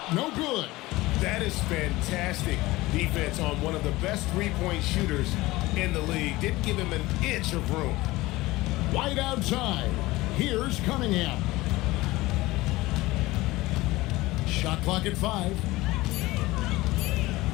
no good. That is fantastic defense on one of the best three-point shooters in the league. Didn't give him an inch of room. White outside. Here's Cunningham. Shot clock at 5.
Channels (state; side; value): quieter; right; 19.5 dB